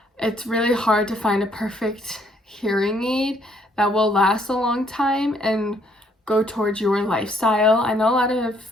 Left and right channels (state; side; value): normal; both; correlation 0.67